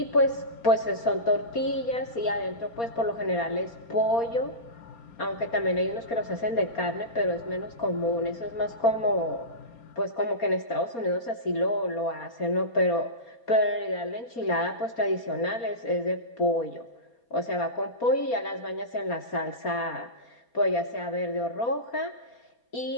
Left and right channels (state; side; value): late; right; 4.3 ms